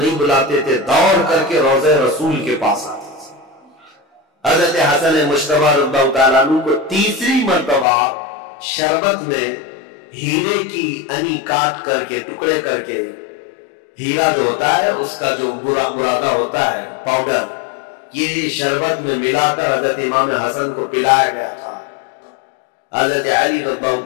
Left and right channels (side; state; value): right; drops out; at 7.9 s